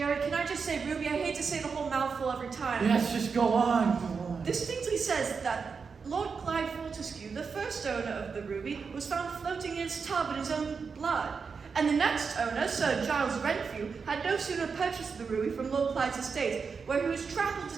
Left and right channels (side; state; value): left; quieter; 5.4 dB